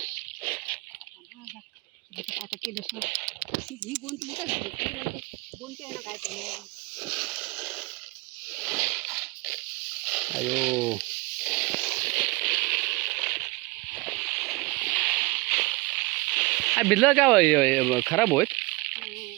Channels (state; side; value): quieter; left; 24.5 dB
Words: आता केलं ही गोंत मोठा झाली गोंत आहे ना काय अयो भिजलं का खराब होत